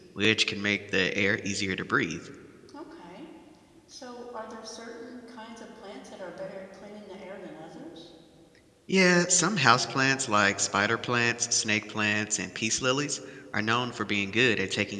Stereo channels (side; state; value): both; identical; correlation 1.00